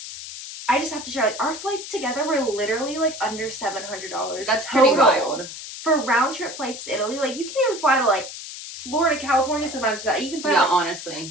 I just have to share, like, our flights together were literally like under $700. That's pretty wild. For round trip flights to Italy. Like, you can't even fly to like Florida, California sometimes for that. You can fly honestly.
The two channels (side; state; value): left; noise; hiss, 11 dB below the sound